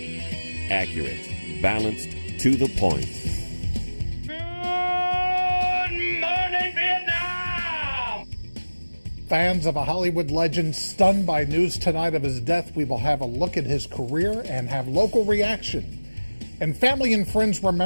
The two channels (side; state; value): both; inverted; correlation -1.00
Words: Accurate, balanced, to the point. Good morning, Vietnam! Fans of a Hollywood legend stunned by news tonight of his death. We will have a look at his career and have local reaction. And family and friends